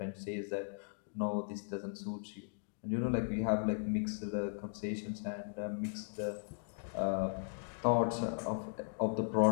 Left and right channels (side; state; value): right; silent; digital silence